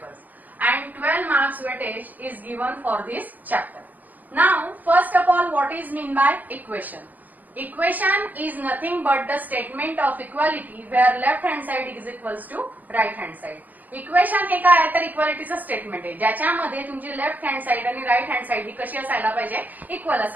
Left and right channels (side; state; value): left; late; 0.082 ms